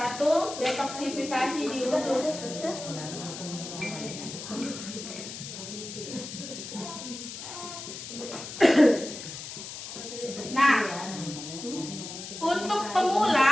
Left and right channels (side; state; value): left; noise; hiss, 10 dB below the sound